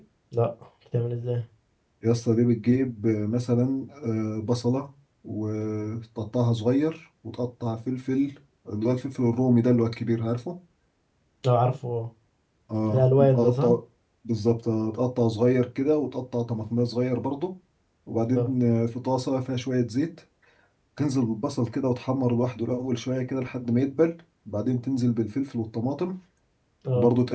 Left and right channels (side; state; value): both; identical; correlation 1.00